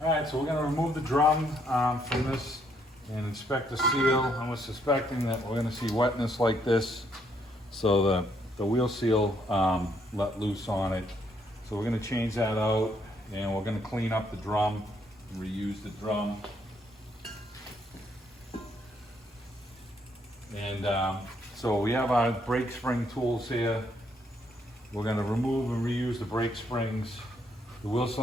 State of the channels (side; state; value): both; normal; correlation 0.72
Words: All right, so we're going to remove the drum from this and inspect the seal. And we're suspecting that we're going to see wetness like this, so the wheel seal let loose on it. So we're going to change that out, and we're going to clean up the drum and reuse the drum. And so we have our brake spring tools here. We're going to remove and reuse the brake springs. The wheel